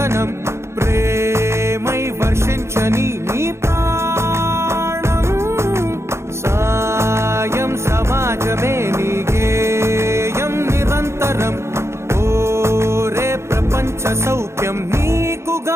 ప్రేమై వర్షించని నీ ప్రాణం. సాయం సమాజమే నీ గేయం నిరంతరం. ఓరే ప్రపంచ సౌఖ్యం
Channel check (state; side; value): late; left; 0.13 ms